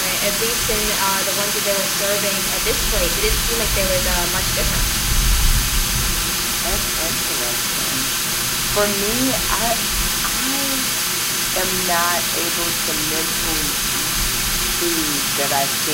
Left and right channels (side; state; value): both; identical; correlation 1.00